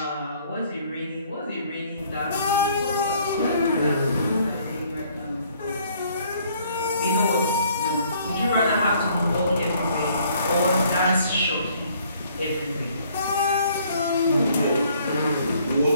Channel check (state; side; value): inverted; both; correlation -0.62